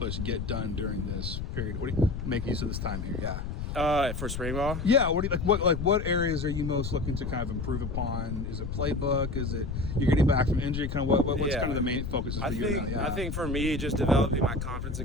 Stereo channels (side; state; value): left; noise; rumble, 5 dB below the sound